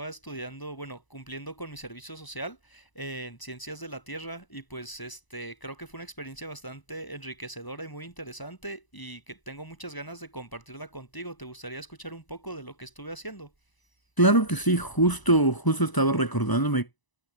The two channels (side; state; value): right; late; 1.0 ms